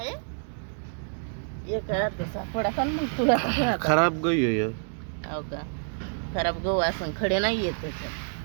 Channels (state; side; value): silent; left; digital silence